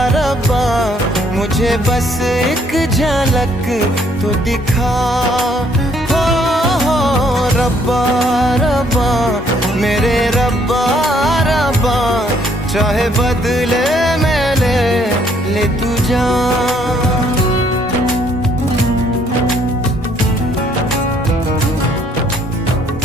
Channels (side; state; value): both; normal; correlation 0.65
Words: रब्बा, मुझे बस एक झलक तो दिखा। हो रब्बा रब्बा मेरे रब्बा रब्बा, चाहे बदले में ले तू जान।